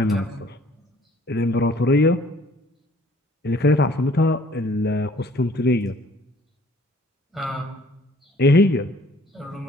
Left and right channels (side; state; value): both; normal; correlation 0.56